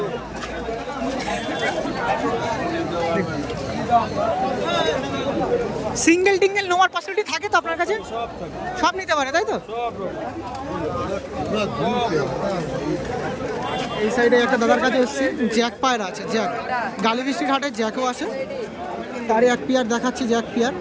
সিঙ্গেল টিঙ্গেল নেওয়ার পসিবিলিটি থাকে তো আপনার কাছে? সব নিতে পারে তাই তো? এই সাইডে একটা দাদার কাছে এসেছি, জ্যাক পায়রা আছে, জ্যাক। গালিবৃষ্টির হাটে জ্যাকও আছে, তারই এক পেয়ার দেখাচ্ছি, জ্যাক পেয়ার।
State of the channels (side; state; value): both; identical; correlation 1.00